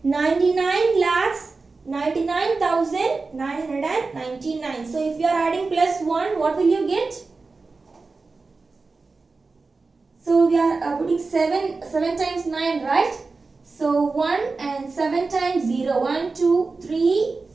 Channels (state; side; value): quieter; left; 4.0 dB